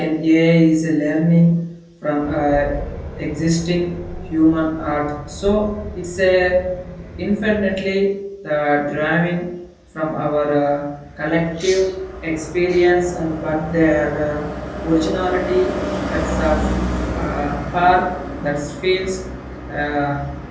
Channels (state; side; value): identical; both; correlation 1.00